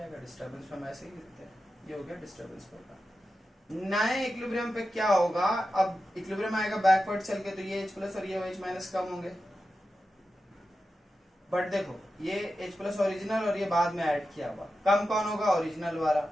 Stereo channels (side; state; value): both; normal; correlation 0.91